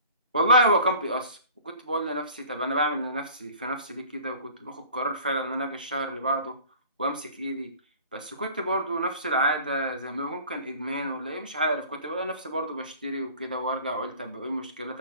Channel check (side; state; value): both; inverted; correlation -0.47